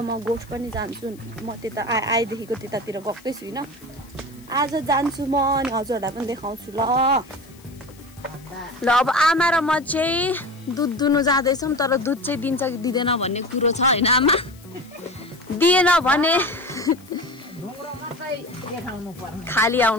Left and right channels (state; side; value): noise; left; hiss, 26 dB below the sound